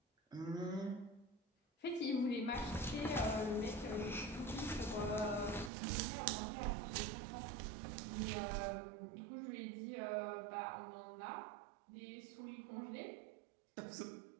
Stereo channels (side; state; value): left; drops out; at 5.7 s